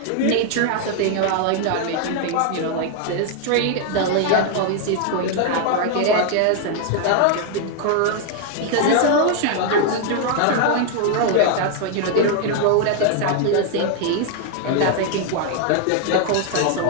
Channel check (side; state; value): both; different; correlation 0.00